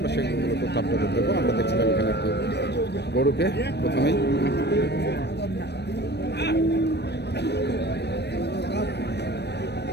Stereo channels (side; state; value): right; late; 0.49 ms